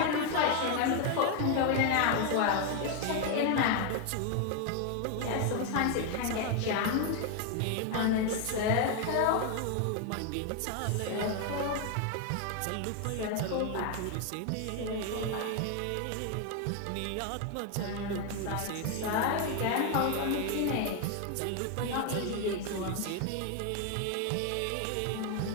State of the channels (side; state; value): both; different; correlation 0.01